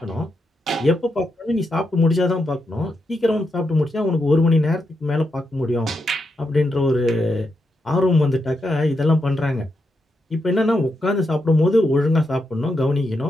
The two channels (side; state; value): both; normal; correlation 0.84